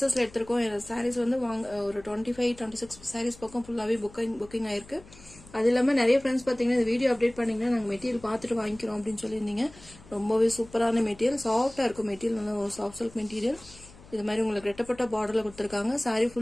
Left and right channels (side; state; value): left; noise; hum, 22 dB below the sound